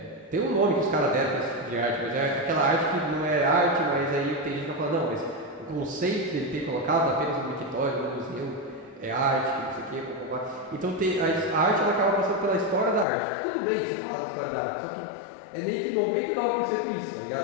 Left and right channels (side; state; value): right; drops out; at 13.1 s